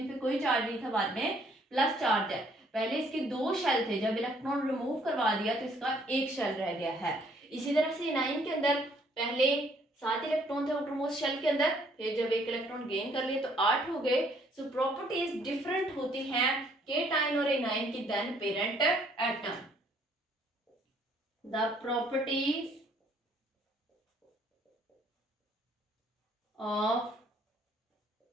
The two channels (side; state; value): both; normal; correlation 0.64